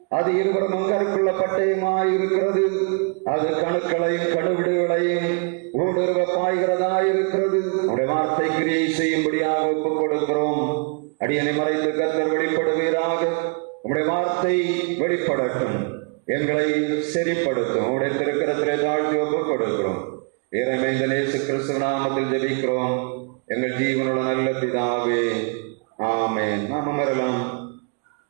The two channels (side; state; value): left; quieter; 39.0 dB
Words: அது இருவரும் அங்கருக்குள்ள பட்டயமாய் இருக்கிறது. அது கணுக்களையும் கணுவிடுகளையும் ஊடுருவ பாய்கிறதாயிருக்கிறது. உம்முடைய வார்த்தை கிரியை செய்யும்படியாக ஒப்புக் கொடுக்கிறோம். அடியனை மறைத்து கர்த்தர் வெளிப்படுவீராக. உம்முடைய வார்த்தை வெளிப்படட்டும், எங்களை செறிப்படுத்தும். உம்முடைய திருக்கரத்திலே தாழ்த்தி ஒப்புக் கொடுக்கிறோம். இறைமைந்த இயேசு கிறிஸ்து நாமத்தில் ஜெபிக்கிறோம் எங்கள் ஜீவனுள்ள நல்ல பிதாவே, ஆமென். நாம் அமரலாம்.